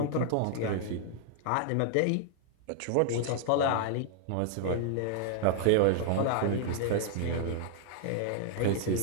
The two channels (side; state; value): both; different; correlation 0.00